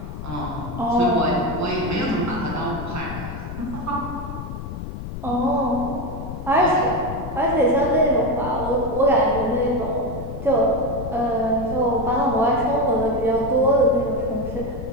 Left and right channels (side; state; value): left; noise; rumble, 8 dB below the sound